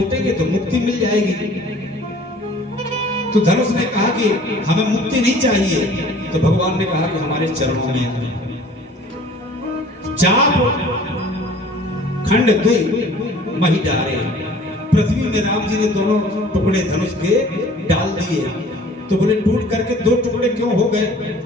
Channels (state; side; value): normal; both; correlation 0.50